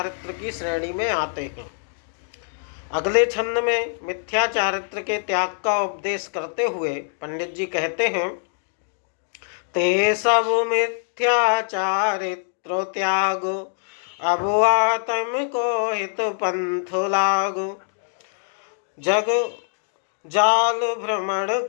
की श्रेणी में आते हैं। अगले छंद में मिथ्या चारित्र के त्याग का उपदेश करते हुए पंडित जी कहते हैं, ते सब मिथ्या चारित्र त्याग, अब आत्म को हित पंथ लागो, जग जाल भ्रमण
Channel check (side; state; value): right; silent; digital silence